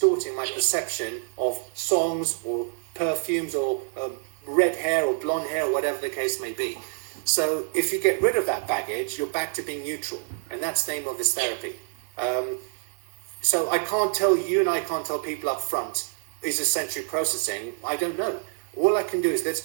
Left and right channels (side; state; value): left; silent; digital silence